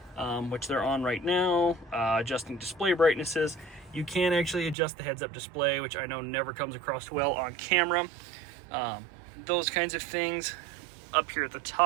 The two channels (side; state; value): left; drops out; at 4.8 s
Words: which they're on right now, adjusting display brightnesses. You can actually adjust the heads-up display, which I know never comes across well on camera. Those kinds of things. Up here at the